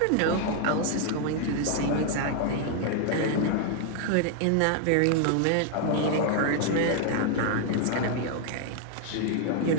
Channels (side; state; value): both; different; correlation 0.00